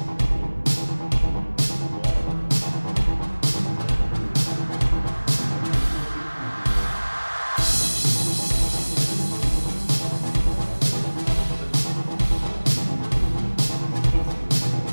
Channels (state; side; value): inverted; both; correlation -1.00